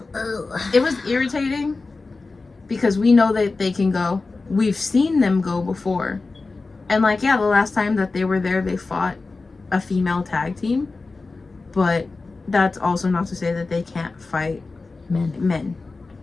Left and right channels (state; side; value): quieter; right; 3.7 dB